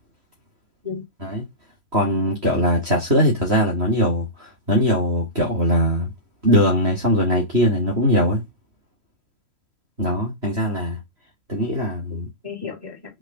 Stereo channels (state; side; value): late; left; 3.0 ms